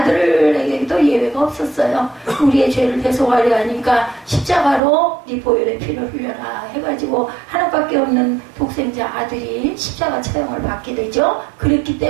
예외가 없었어요. 우리의 죄를 대속하려 하니까 십자가로 네 보혈의 피를 흘려라 해가지고 하나밖에 없는 독생자 아들이 십자가 처형을 받게 되죠. 그랬기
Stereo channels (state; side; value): drops out; left; at 4.8 s